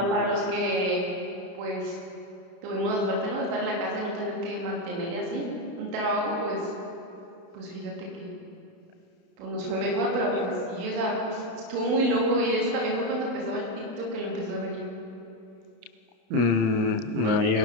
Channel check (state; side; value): late; left; 32 ms